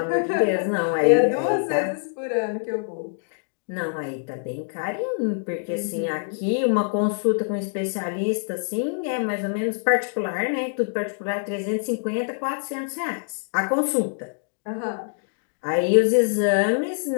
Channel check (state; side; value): silent; right; digital silence